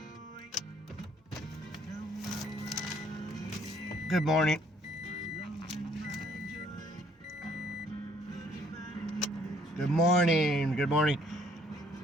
Good morning. Good morning. Good morning.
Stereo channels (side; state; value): both; normal; correlation 0.63